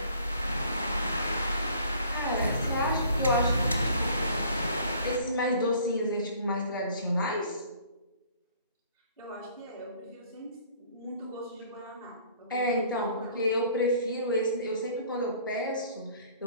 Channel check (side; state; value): both; inverted; correlation -0.55